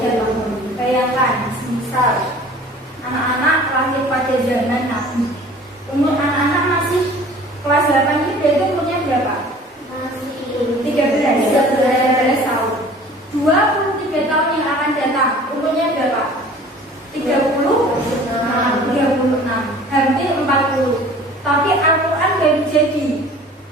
Bayangkan, misal anak-anak lahir pada zaman Nabi, umur anak-anak masih kelas 8 itu berarti umurnya berapa? Masih 13 tahun. 23 tahun yang akan datang, umurnya berapa? 36, hampir 40. Tapi Al-Quran baru jadi.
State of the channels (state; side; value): normal; both; correlation 0.47